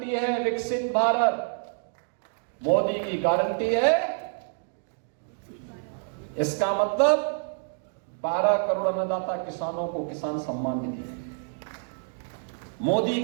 है, विकसित भारत। मोदी की गारंटी है, इसका मतलब 12 करोड़ अन्नदाता किसानों को किसान सम्मान निधि। मोदी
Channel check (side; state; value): left; silent; digital silence